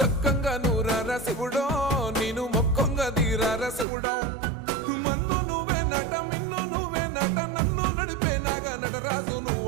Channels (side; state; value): left; drops out; at 3.9 s